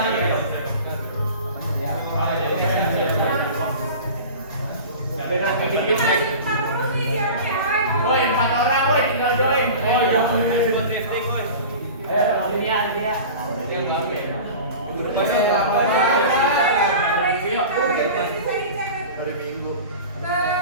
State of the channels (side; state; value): both; inverted; correlation -0.36